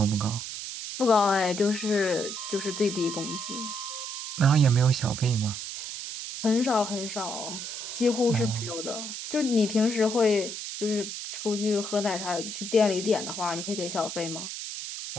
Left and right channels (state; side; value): noise; right; hiss, 7 dB below the sound